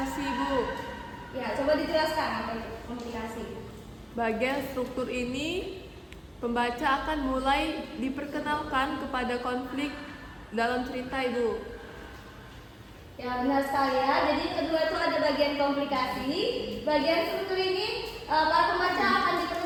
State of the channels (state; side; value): identical; both; correlation 1.00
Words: Bu. Ya, coba dijelaskan apa itu komplikasi. Bagian struktur ini, pembaca akan mulai diperkenalkan kepada konflik dalam cerita, Ibu. Ya, benar sekali ya. Jadi kedua itu ada bagian komplikasi. Bagian struktur ini para pembaca akan